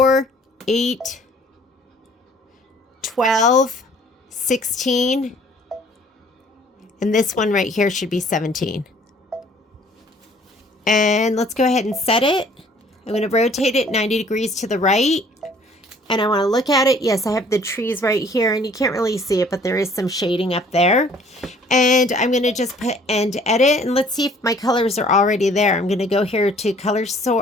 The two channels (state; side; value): normal; both; correlation 0.56